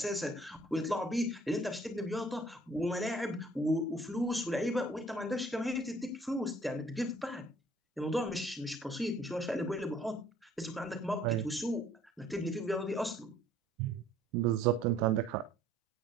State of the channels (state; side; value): normal; both; correlation 0.58